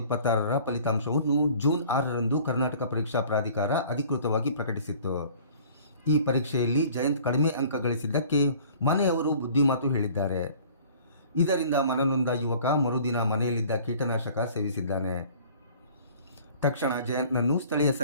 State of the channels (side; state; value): both; inverted; correlation -0.50